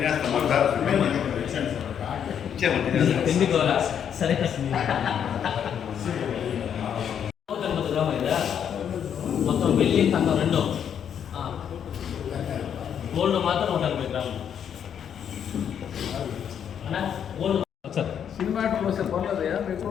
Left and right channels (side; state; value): right; quieter; 8.5 dB